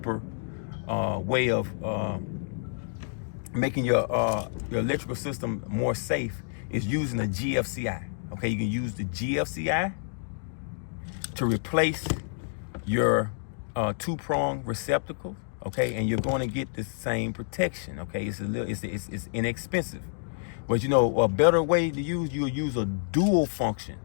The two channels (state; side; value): silent; right; digital silence